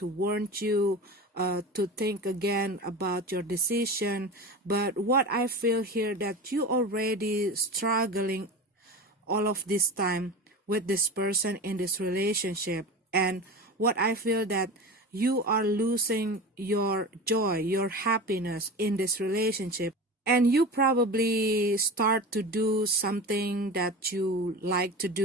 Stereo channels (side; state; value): both; normal; correlation 0.30